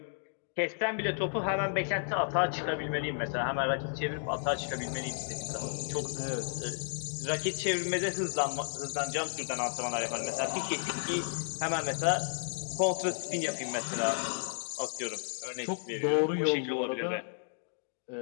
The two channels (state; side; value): silent; right; digital silence